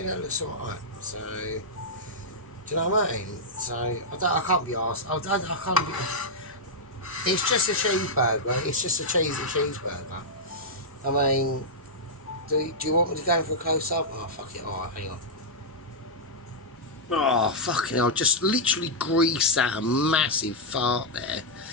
that looks alright. So, do you know what I mean? So I can't be arsed. I can't be. It's just a cheeseburger. It's just a cheesy cheeseburger. I mean, do you want me to go for a close up? Oh, fuck it. Alright, hang on. Oh, fucking hell. Just literally greased out a massive fart there.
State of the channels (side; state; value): both; normal; correlation -0.06